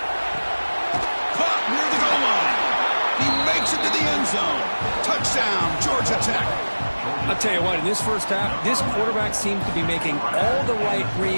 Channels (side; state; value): both; inverted; correlation -1.00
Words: Caught near the goal line. He makes it to the end zone. Touchdown, Georgia Tech. I'll tell you what, in this first half, this quarterback seems to be making all the right